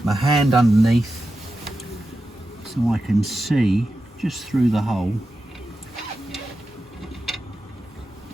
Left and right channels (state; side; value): normal; both; correlation 0.91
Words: my hand underneath so I can see just through the hole.